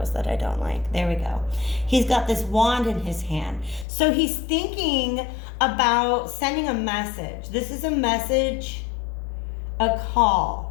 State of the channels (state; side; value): drops out; right; at 3.9 s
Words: that I don't like. There we go. He's got this wand in his hand. So he's thinking about sending a message. This is a message, a